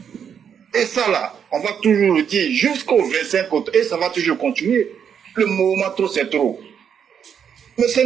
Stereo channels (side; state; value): left; quieter; 7.8 dB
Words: Et ça là, on va toujours le dire jusqu'au 25 août, et ça va toujours continuer. Le mouvement trop, c'est trop. Mais c'est